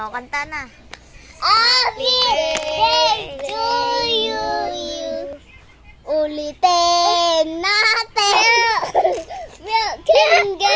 kanta na. Happy birthday to you. Ulitin natin. Milk and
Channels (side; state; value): both; identical; correlation 1.00